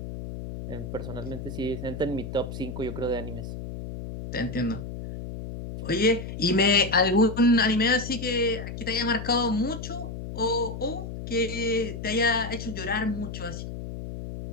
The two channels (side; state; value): left; noise; hum, 8 dB below the sound